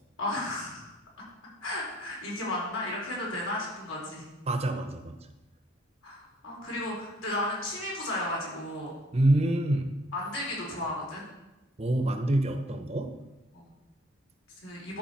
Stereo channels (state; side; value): normal; both; correlation 0.60